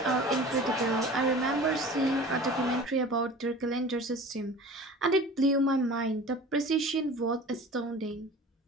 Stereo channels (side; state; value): both; normal; correlation 0.40